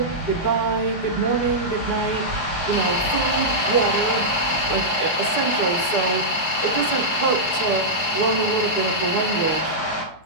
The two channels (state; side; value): late; right; 19 ms